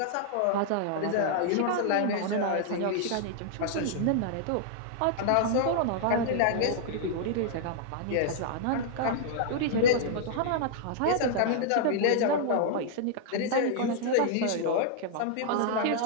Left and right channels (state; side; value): different; both; correlation -0.01